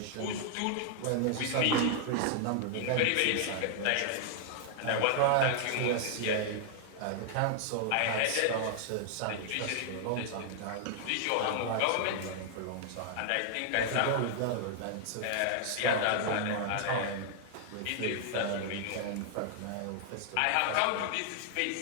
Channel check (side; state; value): both; different; correlation 0.00